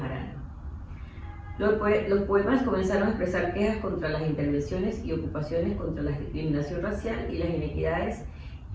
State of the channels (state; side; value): identical; both; correlation 1.00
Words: Los poemas comenzaron a expresar quejas contra las intervenciones y ocupaciones, contra la discriminación racial y las inequidades,